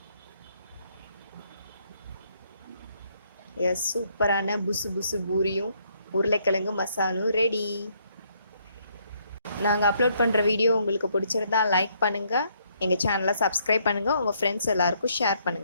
எஸ், சூப்பரான புசு புசு பூரியும் உருளைக்கிழங்கு மசாலும் ரெடி. நாங்கள் அப்லோட் பண்ணுற வீடியோ உங்களுக்கு பிடிச்சிருந்தா லைக் பண்ணுங்கள், எங்கள் சேனலை சப்ஸ்கிரைப் பண்ணுங்கள், உங்கள் ஃப்ரெண்ட்ஸ் எல்லாருக்கும் ஷேர்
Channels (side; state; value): both; inverted; correlation -0.70